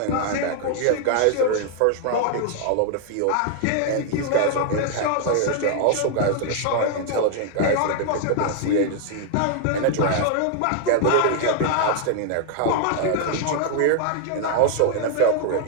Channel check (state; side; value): different; both; correlation 0.00